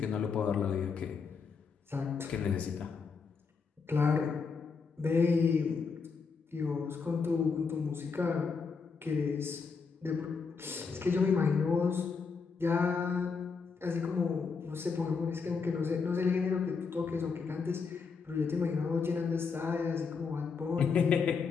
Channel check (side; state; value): right; quieter; 5.2 dB